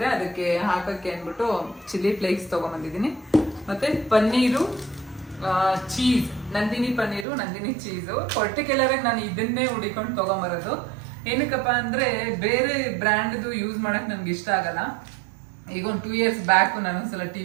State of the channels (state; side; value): drops out; left; at 7.2 s